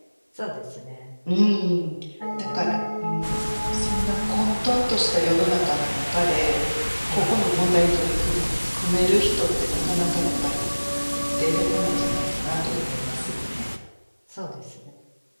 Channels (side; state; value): both; inverted; correlation -1.00